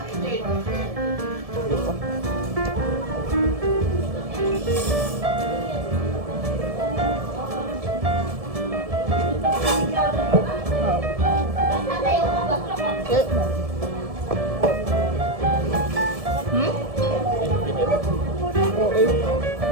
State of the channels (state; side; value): late; left; 1.7 ms